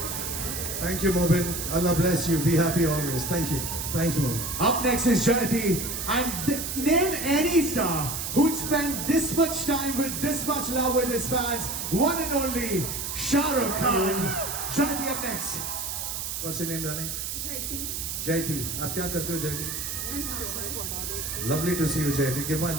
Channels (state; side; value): noise; right; hiss, 4 dB below the sound